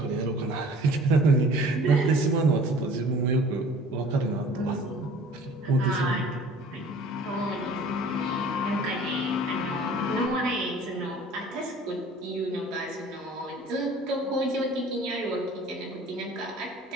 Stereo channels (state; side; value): normal; both; correlation 0.48